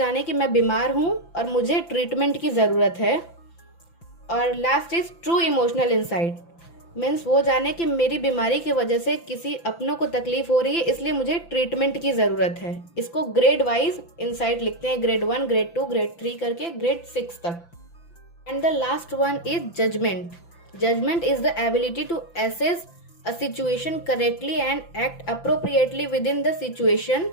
कि मैं बीमार हूँ और मुझे ट्रीटमेंट की ज़रूरत है। और last is true emotional insight. Means वो जाने कि मेरी बीमारी की वजह से किसी अपनों को तकलीफ हो रही है, इसलिए मुझे ट्रीटमेंट की ज़रूरत है। इसको ग्रेड वाइज इंसाइट लिखते हैं, ग्रेड 1, ग्रेड 2, ग्रेड 3 करके ग्रेड 6 तक। And the last one is judgement. Judgement is the ability to assess a situation correctly and act appropriately with in the situation.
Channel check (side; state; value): right; late; 5.9 ms